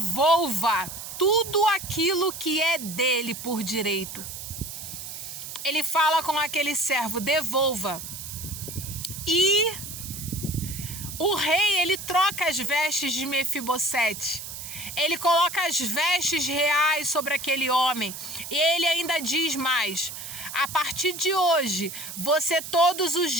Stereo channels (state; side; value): noise; right; hiss, 9 dB below the sound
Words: tudo aquilo que é dele por direito. Ele fala com aquele servo: devolva. E o rei, ele troca as vestes de Mefibosete. Ele coloca as vestes reais sobre aquele homem. E ele ainda diz mais: a partir de hoje, você todos os